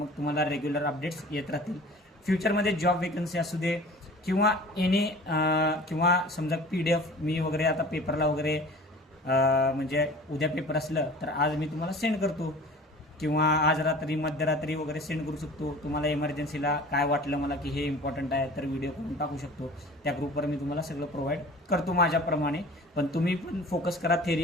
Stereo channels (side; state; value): both; normal; correlation 0.43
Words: तुम्हाला रेग्युलर अपडेट्स येत राहतील. फ्युचरमध्ये जॉब वेकन्सी असू दे किंवा किंवा समजा PDF मी वगैरे आता पेपरला वगैरे म्हणजे उद्या पेपर असलं तर आज मी तुम्हाला सेंड करतो, किंवा आज रात्री मध्यरात्री वगैरे सेंड करू शकतो. तुम्हाला इमर्जन्सीला काय वाटलं मला की हे इम्पॉर्टंट आहे तर व्हिडिओ करून टाकू शकतो. त्या ग्रुपवर मी तुम्हाला सगळं प्रोव्हाइड करतो माझ्याप्रमाणे. पण तुम्ही पण फोकस करा